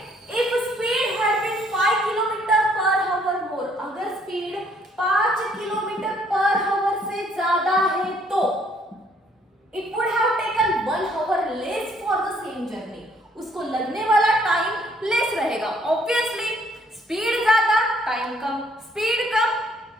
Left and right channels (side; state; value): both; normal; correlation 0.65